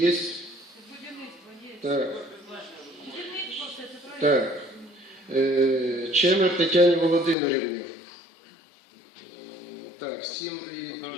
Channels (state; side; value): drops out; right; at 7.4 s